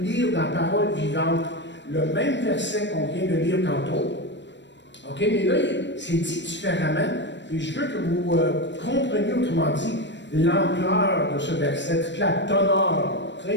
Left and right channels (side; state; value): right; late; 0.53 ms